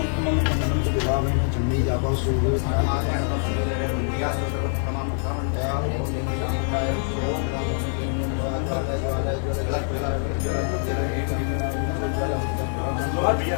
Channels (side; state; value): right; silent; 62 dB below the other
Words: अनंत विभावं चंडी जापो सुवे